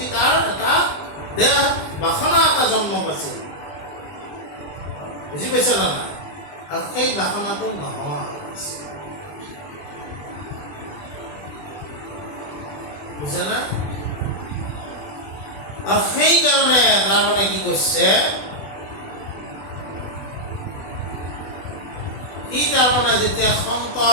তাৰ এটা দেহ বাসনা এটা জন্ম পাইছিল। বুজি পাইছে না নাই? আৰু সেই বাসনাটো নোহোৱা হৈছে। বুজা নাই? আৰু সেইকাৰণে তাৰমানে কি কৈছে, সি তাৰমানে যেতিয়া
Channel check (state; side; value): late; right; 20 ms